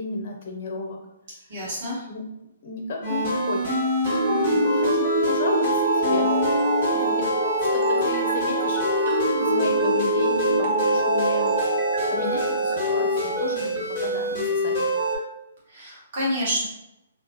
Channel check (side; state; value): both; inverted; correlation -0.49